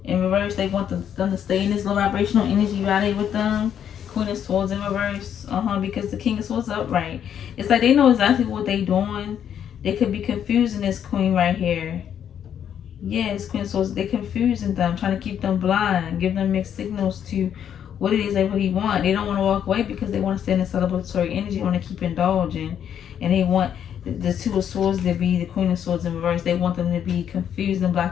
in reverse. They want them to stay in this low vibrational energy while they with them. Queen of Swords in reverse. Because the King of Swords is upright. It's like they know exactly what they doing. They could be confusing this Queen right here. Yes, Queen of Swords. They're confusing them, trying to keep them blind, give them mixed signals to what it is they really want. They don't want to walk away because they want to stay in the celebratory energy. They want to keep indulging. And they want the Two of Swords to be the Queen of Swords in reverse. They want them to be confused and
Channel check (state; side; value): quieter; right; 9.1 dB